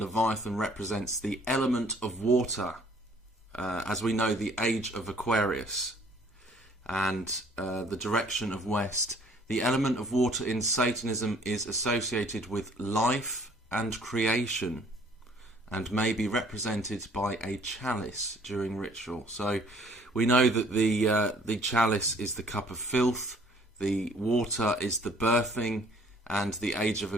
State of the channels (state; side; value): normal; both; correlation 0.58